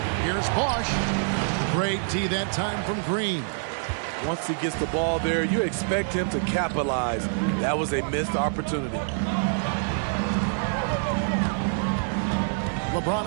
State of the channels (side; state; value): left; silent; digital silence